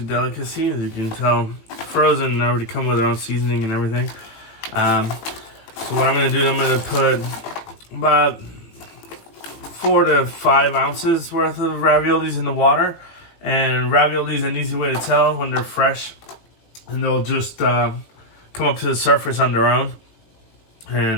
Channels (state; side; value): late; right; 18 ms